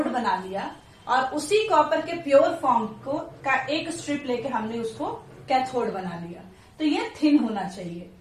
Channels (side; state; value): both; identical; correlation 1.00